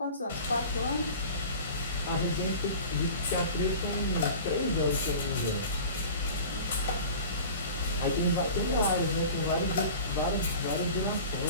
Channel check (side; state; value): both; inverted; correlation -0.39